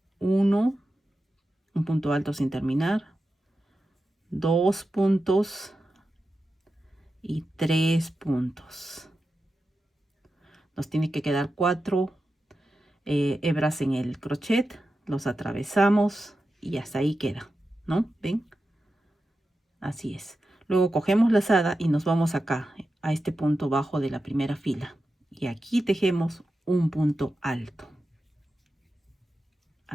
1, un punto alto sin terminar, 2 puntos y 3 puntos. Nos tiene que quedar 4 hebras en el crochet, los atravesamos y hasta ahí queda, ¿no? ¿Ven? Así es. Luego cogemos lazada y nos vamos acá a este punto bajo de la primera fila y aquí tejemos un punto alto.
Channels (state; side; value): normal; both; correlation 0.91